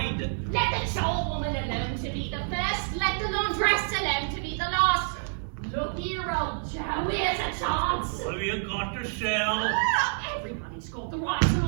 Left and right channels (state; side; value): silent; left; digital silence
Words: Let the chore woman alone to be the first, let the laundress alone to be the last. Look here, old Joe, here's a chance. What have you got to sell? Everybody's got the right to